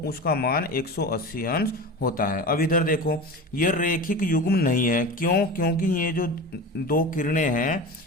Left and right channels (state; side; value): normal; both; correlation 0.30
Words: उसका मान 180 अंश होता है। अब इधर देखो, ये रेखिक युग्म नहीं है। क्यों? क्योंकि ये जो दो किरणें हैं